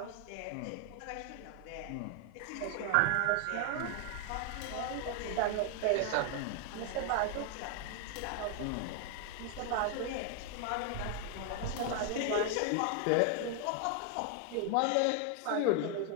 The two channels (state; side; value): different; both; correlation 0.00